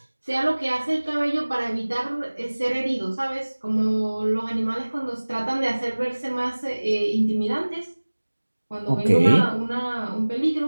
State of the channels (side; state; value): both; inverted; correlation -1.00